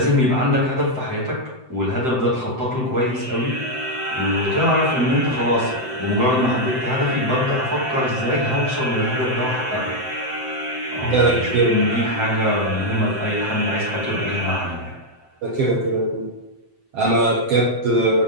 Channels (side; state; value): left; late; 7.8 ms